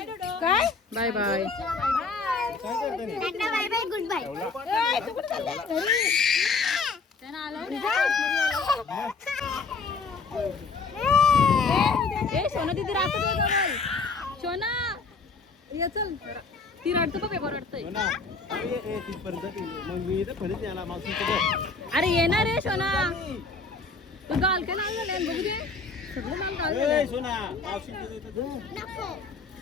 काय? Bye bye. Bye bye goodbye. ए सोना दीदी राहतो तुझ्या जवळ. सोना ये चल. ती रडतो बघ, पेपर रडतय. हो ना. ए तिथपर्यंत गेली. मग मी इथं खोलीत याला मावशीचं. अरे येणार रे सोना. तू गाल काय लाल झाले बघू दे. सगळं लाल गाल ए झालंय. सोना मावशीचं इथं तू. नको.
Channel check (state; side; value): quieter; right; 4.4 dB